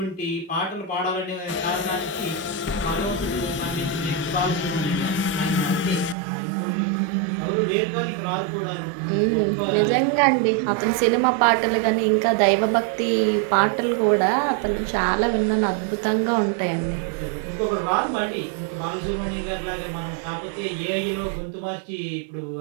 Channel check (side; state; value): left; drops out; at 6.2 s